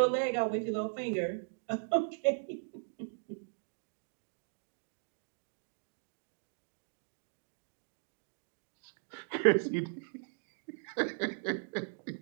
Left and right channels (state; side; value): silent; left; digital silence